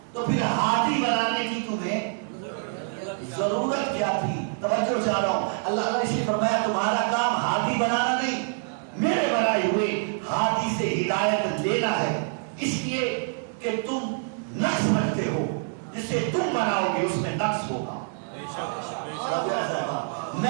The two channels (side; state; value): left; silent; 61 dB below the other